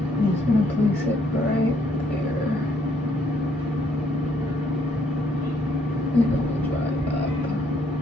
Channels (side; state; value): both; normal; correlation 0.68